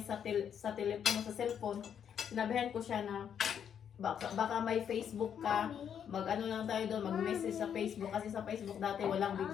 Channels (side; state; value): right; quieter; 8.4 dB